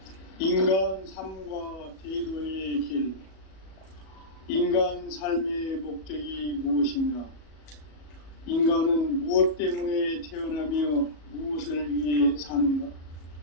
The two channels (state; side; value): late; right; 37 ms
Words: 인간 삶과 대도의 길. 인간 삶의 목적이 무엇인가? 인간은 무엇 때문에 태어나며 무엇을 위해 사는가?